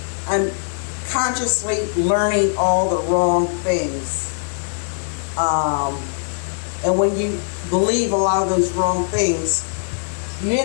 I'm consciously learning all the wrong things. And when you believe a lot of those wrong things, you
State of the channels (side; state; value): right; silent; 65 dB below the other